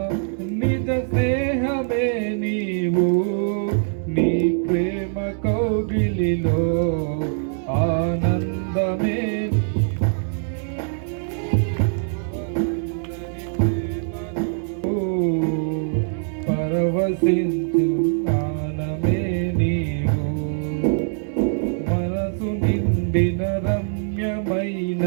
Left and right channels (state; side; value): silent; left; 64 dB below the other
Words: నిజ స్నేహమే నీవు, నీ ప్రేమ కౌగిలిలో ఆనందమే పరవశించు ఆనమే నీవు. మనసు నిండిన రమ్యమైన